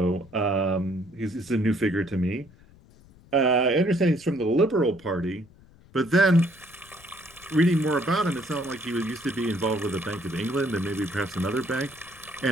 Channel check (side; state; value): left; noise; rumble, 25 dB below the sound